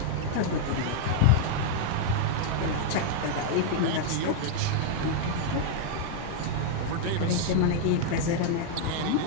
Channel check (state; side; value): different; both; correlation 0.00